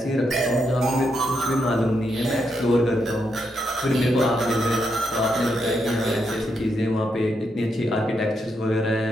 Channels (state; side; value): normal; both; correlation 0.80